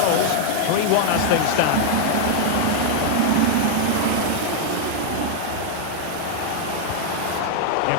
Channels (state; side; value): different; both; correlation 0.00